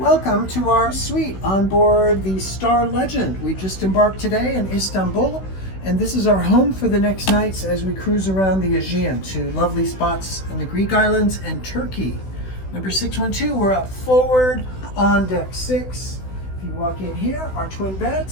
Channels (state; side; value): late; right; 16 ms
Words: to our suite on board the Star Legend. We just embarked today in Istanbul, and this is our home for the next nights as we cruise around the Aegean to lovely spots in the Greek islands and Turkey. Number 612, we're up forward on deck 6. If you walk in here, our twin